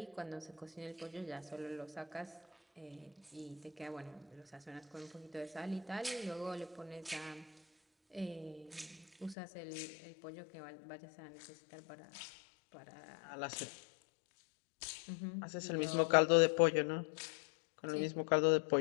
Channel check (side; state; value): right; drops out; at 9.3 s